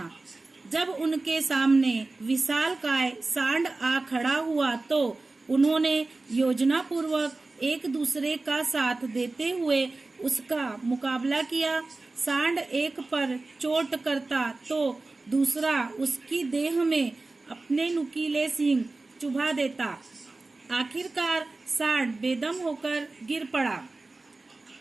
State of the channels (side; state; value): left; quieter; 3.3 dB